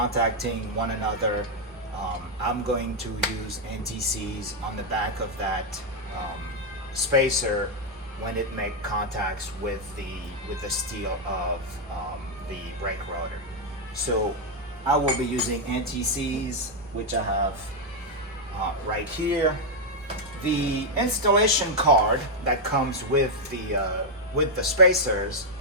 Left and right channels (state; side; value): normal; both; correlation 0.01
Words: one another. I'm going to use NTCs on the back of that spacer when it makes contacts with the steel of the brake rotor. So I will be using NTCs, which I have right here. The installation card that comes with the spacers,